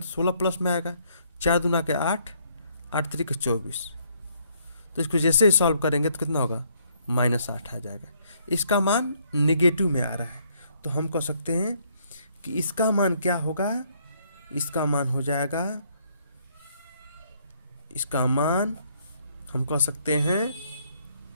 16 प्लस में आएगा, 4 दूना के 8, 8 3 के 24। तो इसको जैसे ही सॉल्व करेंगे तो कितना होगा, -8 आ जाएगा। इसका मान निगेटिव में आ रहा है, तो हम कह सकते हैं कि इसका मान क्या होगा, इसका मान हो जाएगा, इसका मान हम कह सकते हैं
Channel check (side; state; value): both; inverted; correlation -0.68